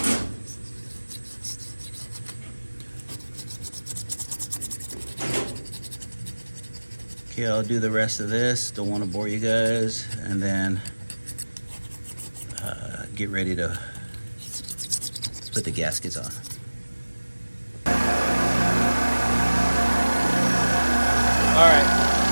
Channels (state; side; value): inverted; both; correlation -1.00